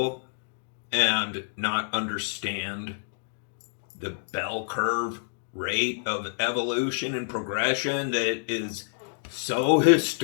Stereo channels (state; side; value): silent; right; digital silence